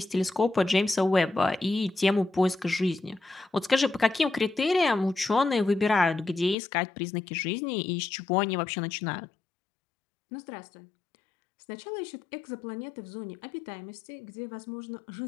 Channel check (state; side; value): drops out; right; at 6.6 s